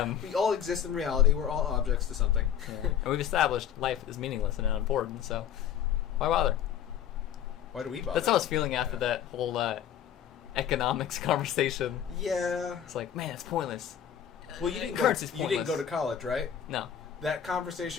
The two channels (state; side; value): quieter; right; 9.5 dB